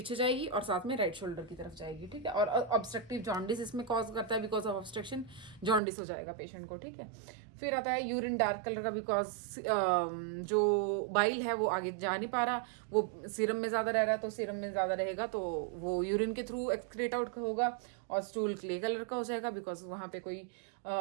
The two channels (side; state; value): left; drops out; at 5.8 s